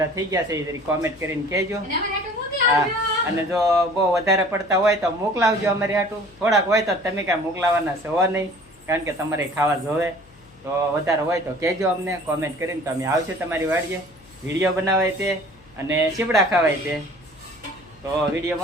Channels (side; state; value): left; noise; hum, 27 dB below the sound